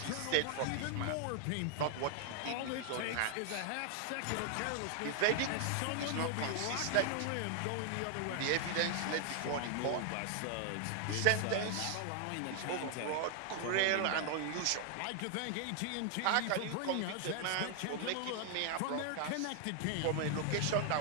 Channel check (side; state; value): both; different; correlation 0.00